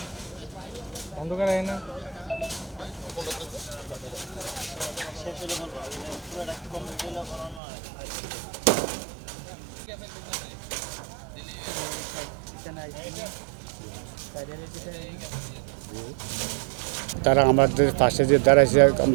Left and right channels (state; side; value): drops out; left; at 7.6 s